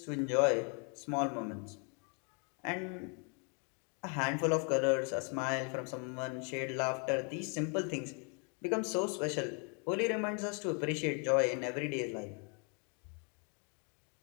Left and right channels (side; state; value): right; quieter; 36.8 dB